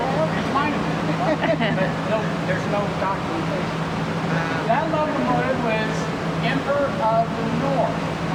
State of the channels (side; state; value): both; identical; correlation 1.00